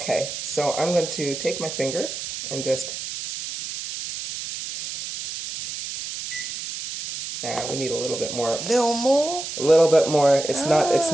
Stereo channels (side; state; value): right; noise; hiss, 7 dB below the sound